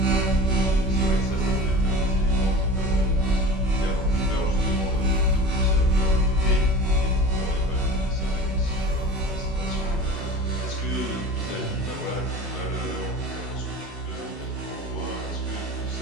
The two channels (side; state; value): both; normal; correlation 0.36